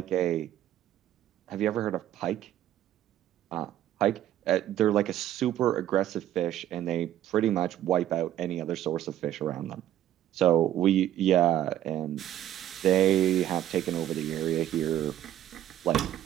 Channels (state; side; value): quieter; left; 12.2 dB